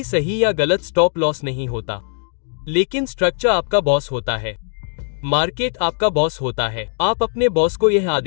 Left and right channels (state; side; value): silent; right; digital silence